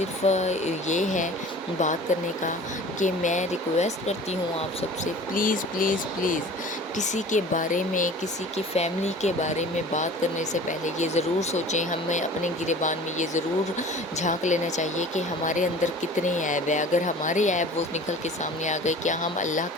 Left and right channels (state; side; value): normal; both; correlation 0.42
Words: یہ ہے بات کرنے کا کہ میں ریکویسٹ کرتی ہوں آپ سب سے، پلیز پلیز پلیز کسی کے بارے میں، کسی کی فیملی کے بارے میں بات کرنے سے پہلے یہ ضرور سوچیں، ہمیں اپنے گریبان میں یہ ضرور جھانک لینا چاہیے کہ ہمارے اندر کتنے عیب ہیں۔ اگر ہمارے عیب وہ نکل کے سامنے آ گئے، کیا ہم اللہ